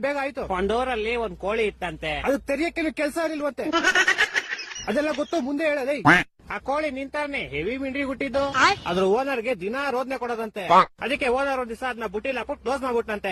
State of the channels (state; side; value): identical; both; correlation 1.00